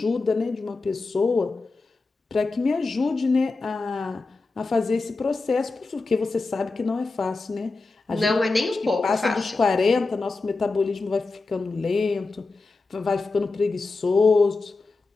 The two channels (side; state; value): right; quieter; 3.7 dB